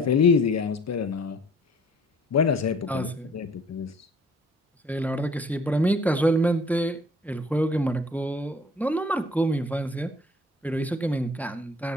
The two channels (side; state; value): both; normal; correlation 0.54